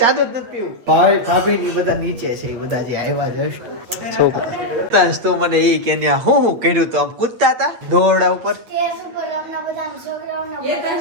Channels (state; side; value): late; left; 8.9 ms